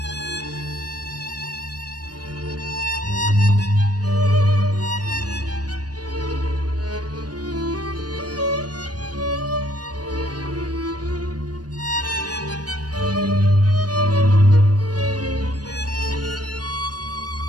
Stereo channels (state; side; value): late; left; 0.69 ms